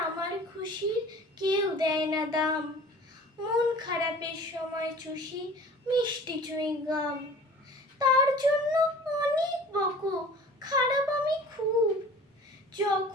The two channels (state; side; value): normal; both; correlation 0.44